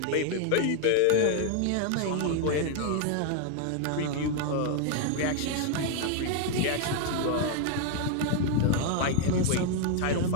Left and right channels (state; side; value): different; both; correlation 0.00